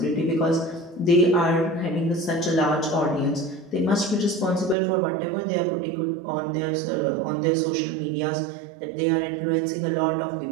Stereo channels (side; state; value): left; drops out; at 4.8 s